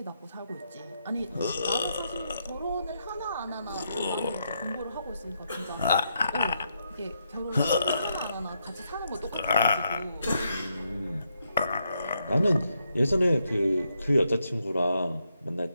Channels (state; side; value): inverted; both; correlation -0.80